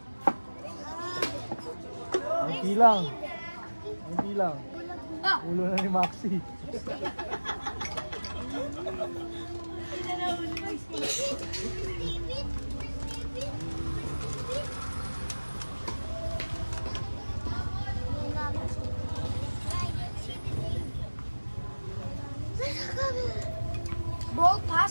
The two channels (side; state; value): both; inverted; correlation -1.00